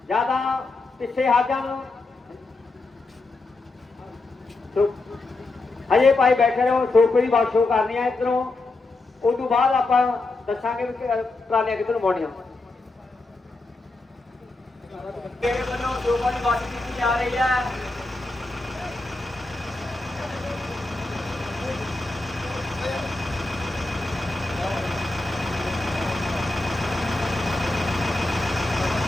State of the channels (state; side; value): quieter; right; 3.2 dB